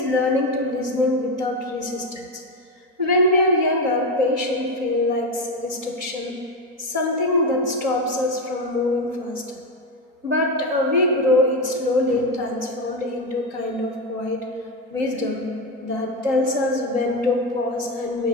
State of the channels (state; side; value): late; left; 3.8 ms